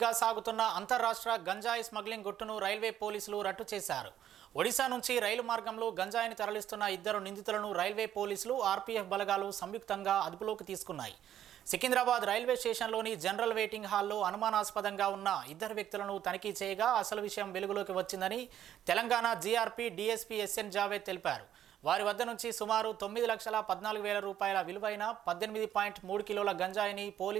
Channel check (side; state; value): left; quieter; 10.9 dB